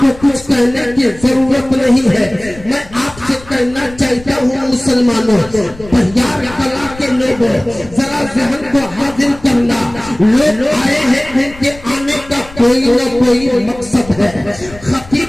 कुछ कहने की जरूरत नहीं है। मैं आपसे कहना चाहता हूँ मुसलमानों, बहियार कला के लोगों, जरा ज़हन को हाजिर करना। लोग आए हैं, उनके आने का कोई न कोई मकसद है।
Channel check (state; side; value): noise; left; rumble, 19 dB below the sound